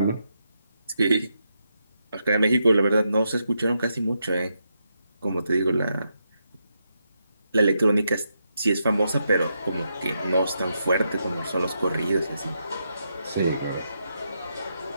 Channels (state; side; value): inverted; both; correlation -0.83